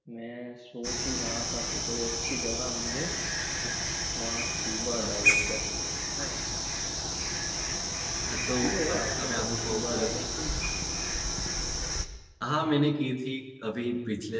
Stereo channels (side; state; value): both; identical; correlation 1.00